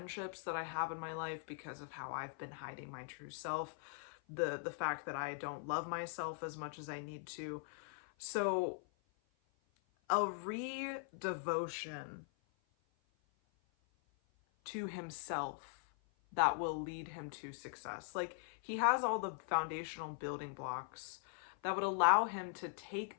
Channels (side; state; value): right; silent; 50 dB below the other